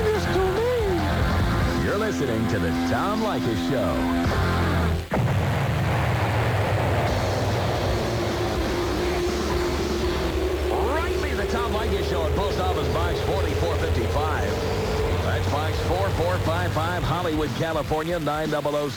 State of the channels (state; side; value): identical; both; correlation 1.00